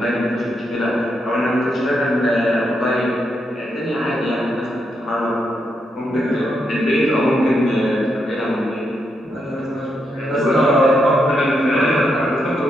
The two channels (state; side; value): normal; both; correlation 0.81